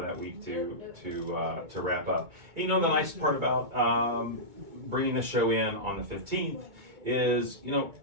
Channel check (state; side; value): late; left; 2.2 ms